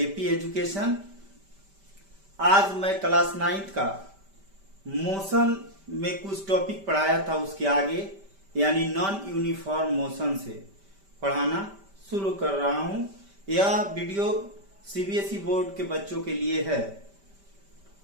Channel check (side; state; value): left; late; 5.1 ms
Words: education. आज मैं class 9th का मोशन में कुछ टॉपिक पढ़ाया था, उसके आगे यानी नॉन यूनिफॉर्म मोशन से पढ़ाना शुरू कर रहा हूं। यह वीडियो सीबीएसई बोर्ड के बच्चों के लिए है।